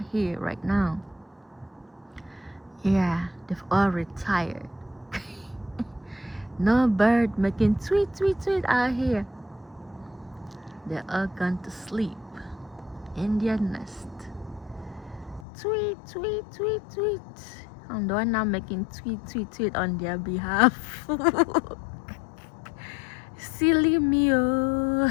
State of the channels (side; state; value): right; drops out; at 15.5 s